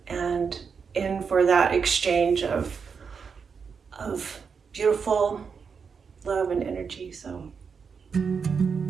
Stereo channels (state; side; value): quieter; left; 5.9 dB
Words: and in for that exchange of beautiful love and energy. So